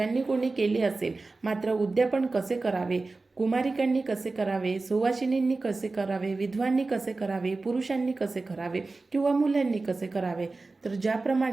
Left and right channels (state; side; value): quieter; left; 3.5 dB